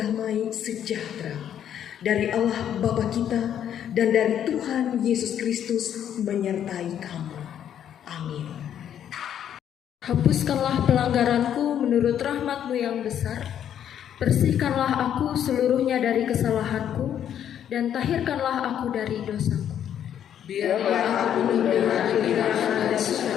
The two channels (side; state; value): right; quieter; 9.8 dB